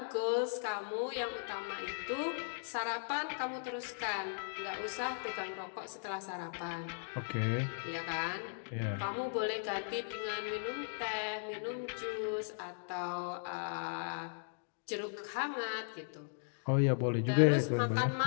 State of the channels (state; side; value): silent; right; digital silence